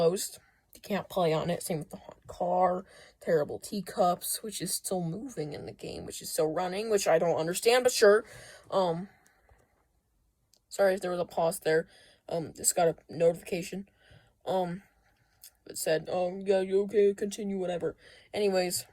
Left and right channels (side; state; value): both; identical; correlation 1.00